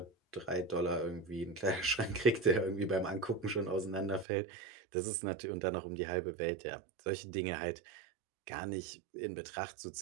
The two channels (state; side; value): drops out; left; at 4.2 s